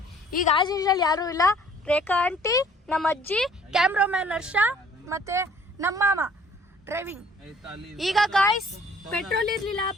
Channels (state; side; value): normal; both; correlation 0.56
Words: ಈಗ ಆಸ್ ಯೂಶುವಲ್ ಯಾರು ಇಲ್ಲ, ರೇಖಾ ಆಂಟಿ, ನಮ್ಮ ಅಜ್ಜಿ, ಕ್ಯಾಮ್ರಾಮ್ಯಾನ್ ಹರ್ಷ ಮತ್ತೆ ನಮ್ಮ ಮಾಮ ಡ್ರೈವಿಂಗ್. ಈಗ ಗಾಯ್ಸ್ ಪೆಟ್ರೋಲ್ ಇರ್ಲಿಲ್ಲ,